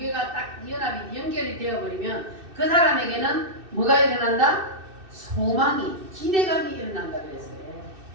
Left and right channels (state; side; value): late; left; 2.6 ms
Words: 딱 연합이 연결이 되어버리면 그 사람에게는 뭐가 일어난다? 소망이, 기대감이 일어난다 그랬어요.